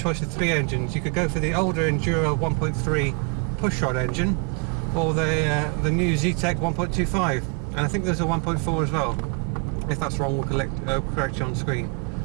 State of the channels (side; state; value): left; quieter; 34.7 dB